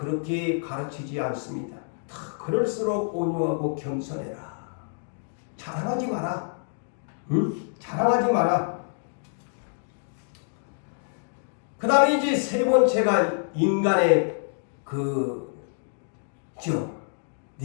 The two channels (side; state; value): right; silent; digital silence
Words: 가르치지 않습니다. 그럴수록 온유하고 겸손해라. 자랑하지 마라. 자랑하지 마라. 그 다음에 이제 세 번째가 인간의